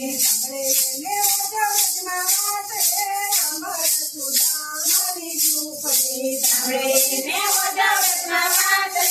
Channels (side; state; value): both; identical; correlation 1.00